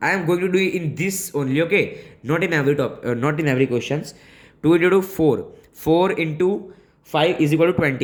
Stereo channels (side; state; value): both; identical; correlation 1.00